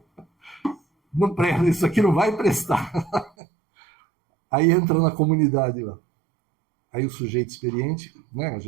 não presta, isso aqui não vai prestar. Aí entra na comunidade lá. Aí o sujeito experiente, né, a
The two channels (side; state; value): left; drops out; at 3.3 s